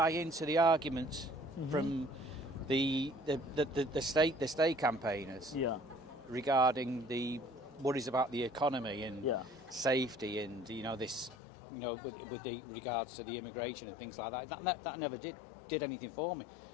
into the arguments from the state campaigners Yeah. regarding the worries about the economy and Yeah. safety, and with the regards to the immigration and things like that. That never did anything for me.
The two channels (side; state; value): right; drops out; at 11.4 s